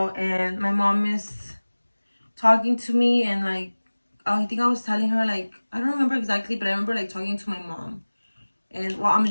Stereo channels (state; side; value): inverted; both; correlation -1.00